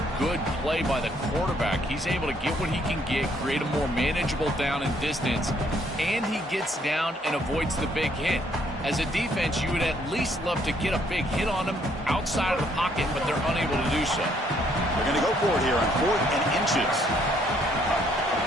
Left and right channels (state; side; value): normal; both; correlation 0.67